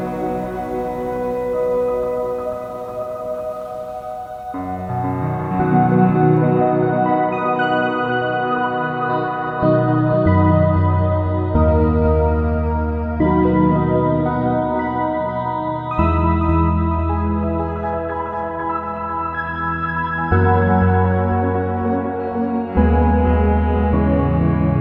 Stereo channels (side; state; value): both; identical; correlation 1.00